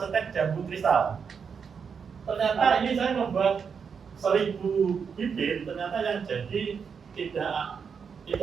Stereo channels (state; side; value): quieter; left; 6.3 dB